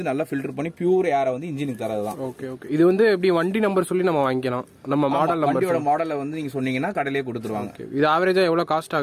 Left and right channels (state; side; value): identical; both; correlation 1.00